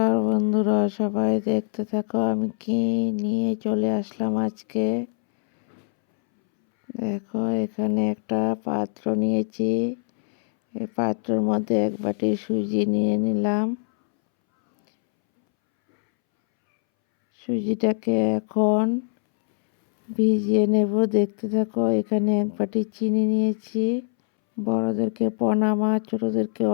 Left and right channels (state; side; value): silent; right; 63 dB below the other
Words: বন্ধুরা, সবাই দেখতে থাকো আমি কি নিয়ে চলে আসলাম আজকে। দেখো, এখানে একটা পাত্র নিয়েছি। এই পাত্রের মধ্যে এক বাটি সুজি নিয়ে নিলাম। সুজিটাকে এখন ভিজিয়ে নেব, দেখতে থাকো। এখানে এক বাটি চিনি নিয়েছি। বড়োদেরকে প্রণাম আর ছোটোদেরকে